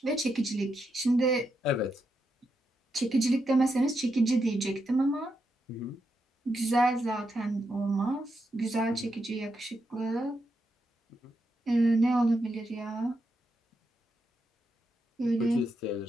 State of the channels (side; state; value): both; normal; correlation 0.83